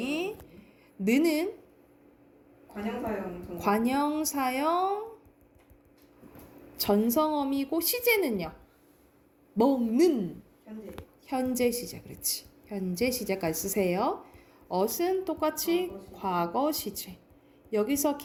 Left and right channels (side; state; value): both; identical; correlation 1.00